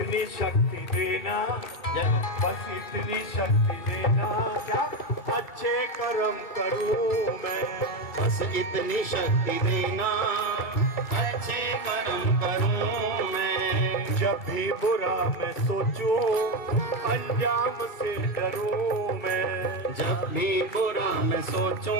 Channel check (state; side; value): late; right; 2.4 ms